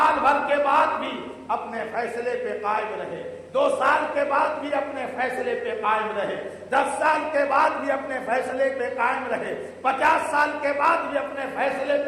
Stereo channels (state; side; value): identical; both; correlation 1.00